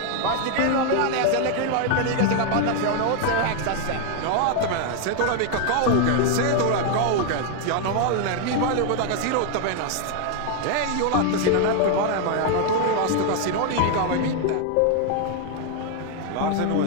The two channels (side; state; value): both; different; correlation 0.01